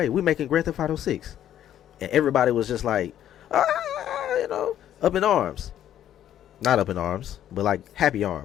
We're making Grand Theft Auto 6. And everybody was just like, up in arms. Not up in arms, but like happy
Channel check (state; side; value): quieter; right; 11.2 dB